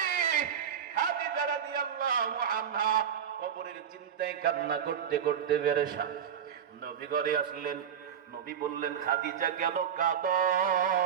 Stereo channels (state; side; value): quieter; left; 8.3 dB